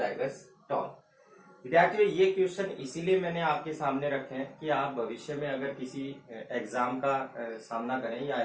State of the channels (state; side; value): identical; both; correlation 1.00